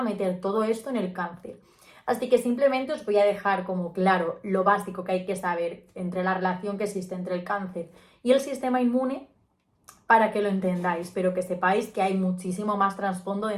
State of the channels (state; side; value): identical; both; correlation 1.00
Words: meter todo esto en el cáncer. Así que simplemente os voy a dejar como claro lo básico que hay que saber entre la relación que existe entre el cáncer y el sistema inmune para que lo entendáis, pero que sepáis que hay muchísimo más trasfondo